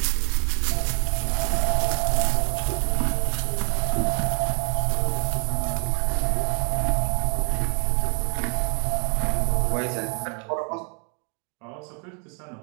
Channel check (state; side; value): quieter; left; 38.1 dB